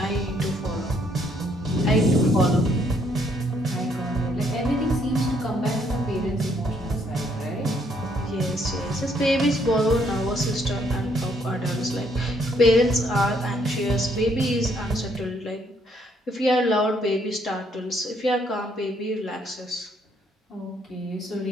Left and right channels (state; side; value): normal; both; correlation 0.69